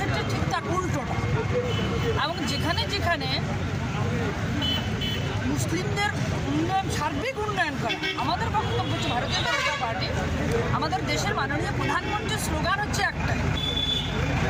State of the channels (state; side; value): identical; both; correlation 1.00